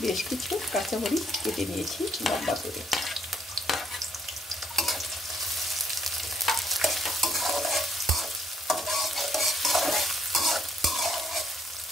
বেশ কিছু কাঁচামরিচ কেটে নিয়েছি লম্বা করে।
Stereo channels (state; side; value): normal; both; correlation 0.68